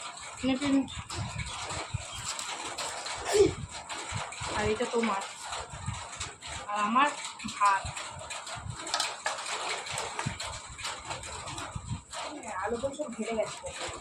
আর এটা তোমার, আর আমার ভাত। আলু তো সব ঘেরে গেছে,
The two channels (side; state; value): both; identical; correlation 1.00